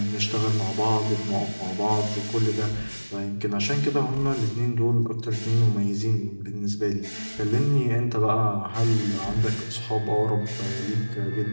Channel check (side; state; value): both; inverted; correlation -1.00